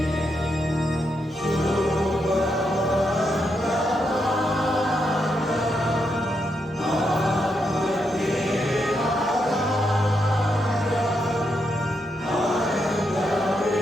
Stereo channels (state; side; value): normal; both; correlation 0.81